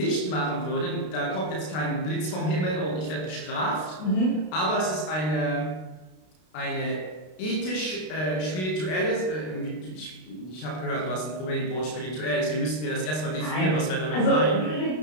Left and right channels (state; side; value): late; right; 32 ms